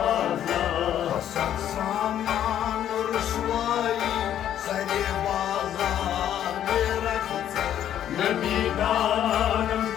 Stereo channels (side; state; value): right; quieter; 10.7 dB